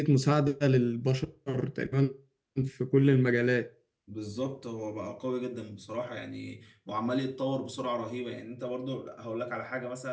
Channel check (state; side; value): identical; both; correlation 1.00